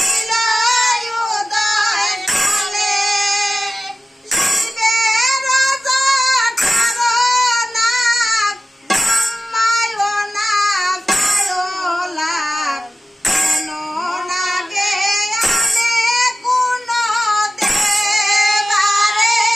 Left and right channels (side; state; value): both; normal; correlation 0.94